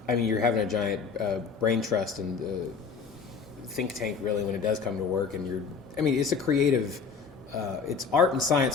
I mean, you're having a giant brain trust and think tank, really, when it does come to work, and it's a creative, it's art and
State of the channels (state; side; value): quieter; right; 5.6 dB